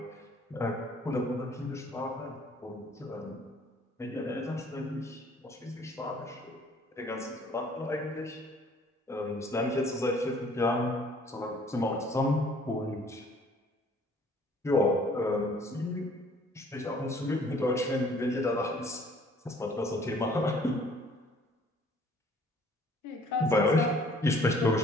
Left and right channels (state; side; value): normal; both; correlation 0.57